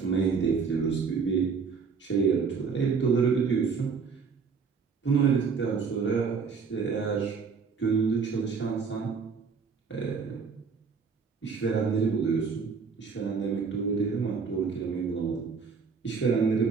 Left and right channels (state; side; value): quieter; left; 5.5 dB